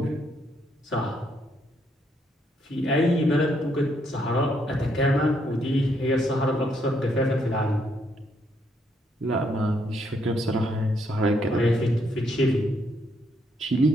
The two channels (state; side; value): normal; both; correlation 0.73